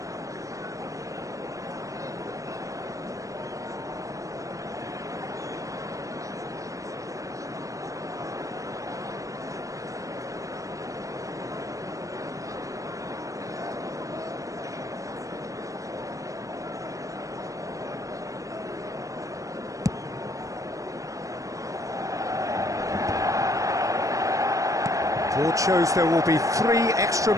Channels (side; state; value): left; late; 0.16 ms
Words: Board shows there will be 3 extra